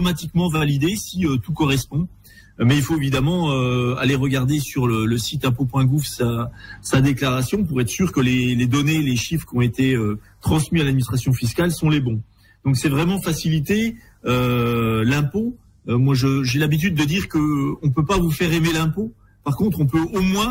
validée si tout correspond. Mais il faut évidemment aller regarder sur le site impôt.gouv sa déclaration pour être sûr que les données, les chiffres qui ont été transmis à l'administration fiscale sont les bons. Donc c'est vraiment faciliter l'impôt. Moi j'ai l'habitude de dire que on peut pas vous faire aimer l'impôt. Par contre, on peut au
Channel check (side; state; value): both; identical; correlation 1.00